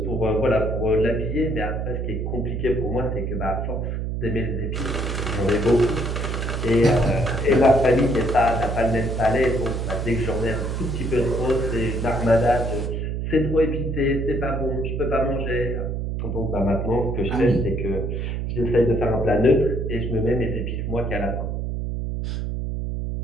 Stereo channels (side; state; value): right; noise; hum, 2 dB below the sound